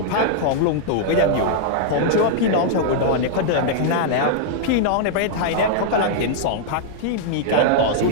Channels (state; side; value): different; both; correlation -0.01